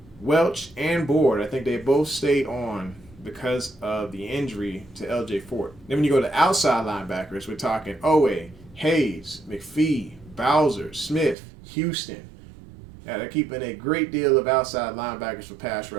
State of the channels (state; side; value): drops out; left; at 11.4 s